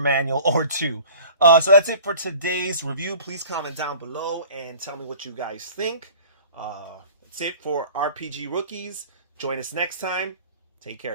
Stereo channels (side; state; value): both; inverted; correlation -0.46